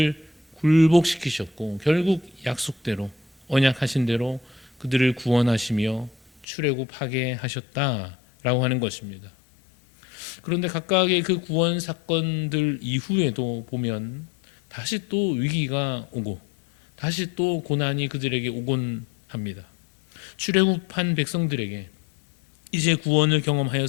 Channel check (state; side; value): drops out; right; at 6.5 s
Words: 굴복시키셨고 결국 약속대로 언약하신 대로 그들을 구원하시며 출애굽하게 하셨다라고 하는 것입니다. 그런데 각각의 그 구원 사건들 이후에도 보면 다시 또 위기가 오고 다시 또 고난이 그들에게 오곤 합니다. 출애굽한 백성들에게 이제 구원을